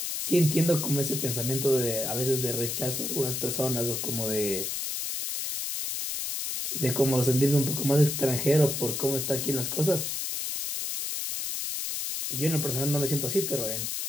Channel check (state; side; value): noise; left; hiss, 3 dB below the sound